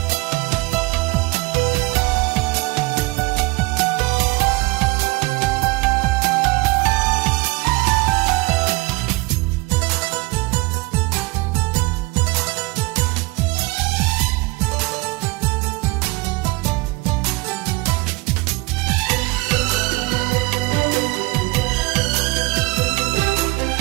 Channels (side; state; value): left; quieter; 23.8 dB